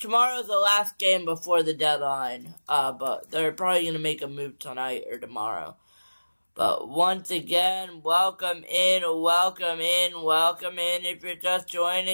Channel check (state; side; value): inverted; both; correlation -1.00